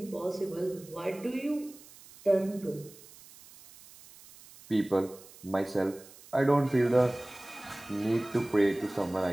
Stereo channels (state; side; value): noise; right; hiss, 21 dB below the sound